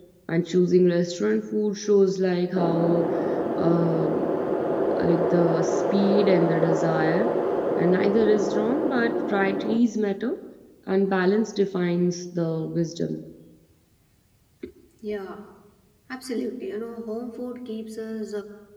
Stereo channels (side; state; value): both; identical; correlation 1.00